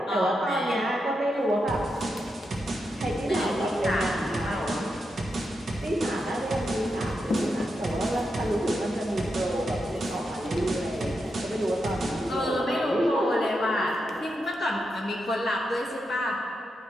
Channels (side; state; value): both; normal; correlation 0.86